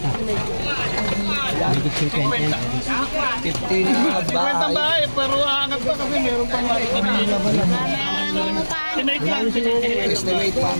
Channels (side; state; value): both; inverted; correlation -1.00